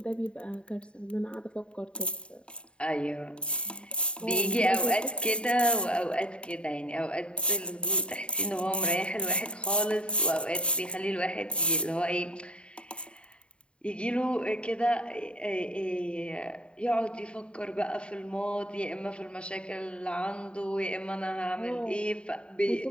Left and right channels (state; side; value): late; right; 0.055 ms